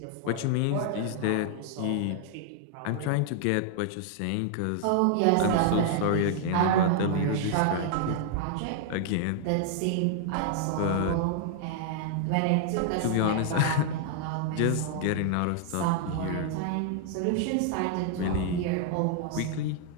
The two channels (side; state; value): both; different; correlation 0.00